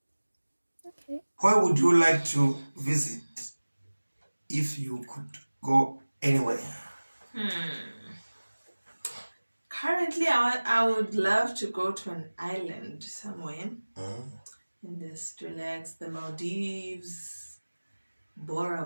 Okay. Where would you like to visit if you could go anywhere? Currently, I would love to go to an island somewhere and just relax. The Maldives,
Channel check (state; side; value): inverted; both; correlation -1.00